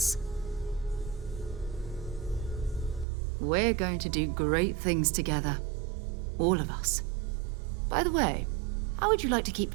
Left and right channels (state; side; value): drops out; left; at 3.1 s